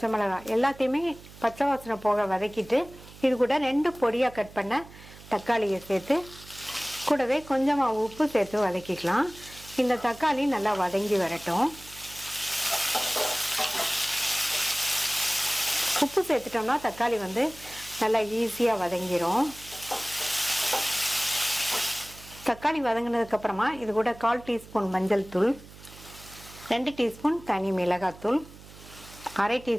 மிளகாய் எல்லாத்தையுமே பச்சை வாசனை போக வதக்கிட்டு இது கூட 2 பொடியாக கட் பண்ண தக்காளியை சேர்த்து கூடவே கொஞ்சமாக உப்பு சேர்த்து வதக்கிக்கலாம். இந்த தக்காளி நல்லா வதங்கி வரட்டும். உப்பு சேர்த்துட்டோம்னா தக்காளி நல்லா ஈஸியாக வதங்கிடும். தக்காளி வதங்கினதுக்கப்புறமா இது கூட 1/4 டீஸ்பூன் மஞ்சள் தூள், 2 டீஸ்பூன் தனி மிளகாத்தூள், 1/2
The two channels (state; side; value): noise; right; hum, 19 dB below the sound